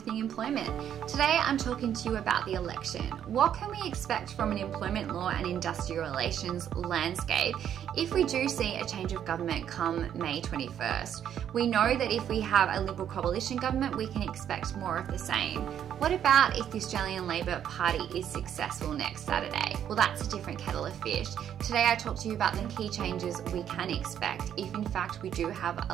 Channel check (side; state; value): left; quieter; 9.6 dB